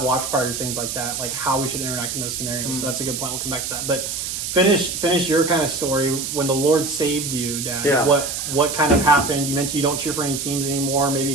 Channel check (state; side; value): noise; right; hiss, 4 dB below the sound